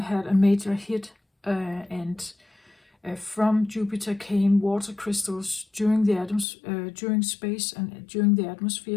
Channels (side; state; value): right; drops out; at 6.5 s